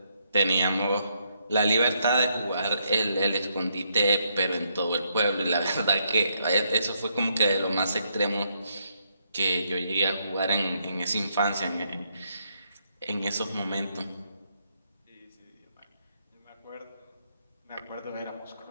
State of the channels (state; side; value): inverted; both; correlation -0.76